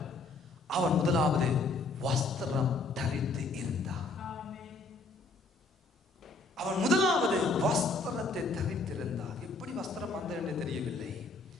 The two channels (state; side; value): quieter; right; 3.4 dB